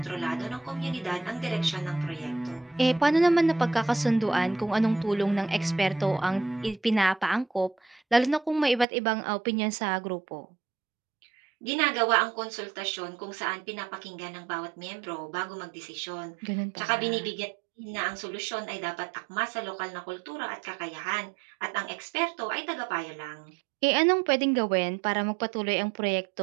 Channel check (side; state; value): left; drops out; at 8.8 s